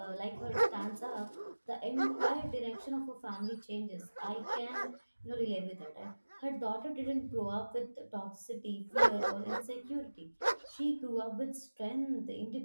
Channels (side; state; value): both; inverted; correlation -1.00